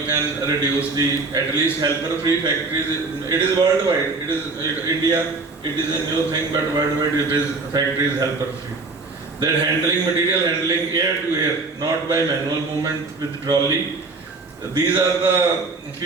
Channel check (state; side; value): quieter; left; 3.7 dB